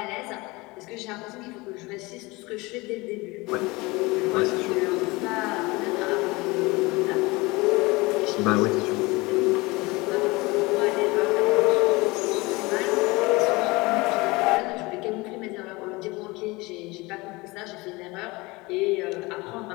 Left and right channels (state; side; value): quieter; right; 23.4 dB